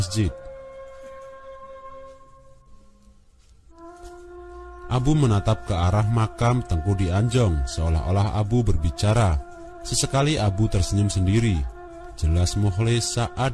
Abu menatap ke arah makam Tengku di Anjong, seolah-olah Abu berbicara. Sesekali Abu tersenyum sendiri. Jelas Mukhlis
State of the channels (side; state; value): both; identical; correlation 1.00